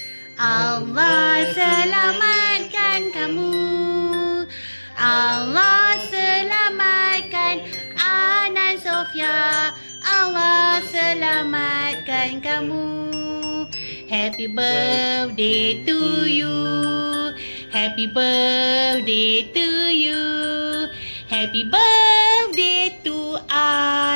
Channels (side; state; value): both; inverted; correlation -1.00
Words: Allah selamatkan kamu. Allah selamatkan Hanan Sofia. Allah selamatkan kamu. Happy birthday to you. Happy birthday to you. Happy birthday to